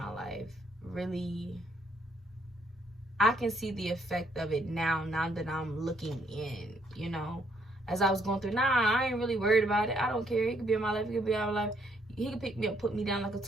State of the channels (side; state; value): both; normal; correlation 0.70